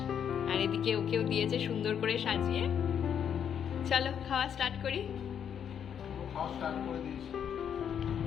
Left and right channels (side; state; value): right; quieter; 8.4 dB